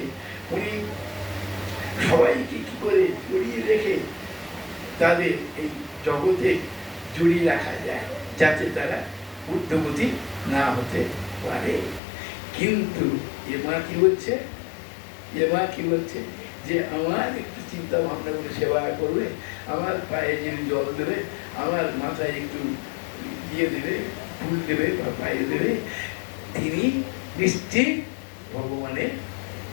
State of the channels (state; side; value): drops out; right; at 12.0 s